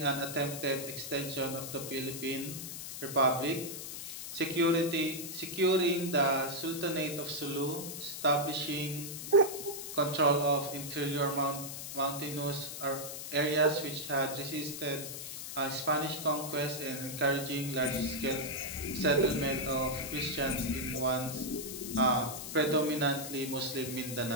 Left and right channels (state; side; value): noise; left; hiss, 8 dB below the sound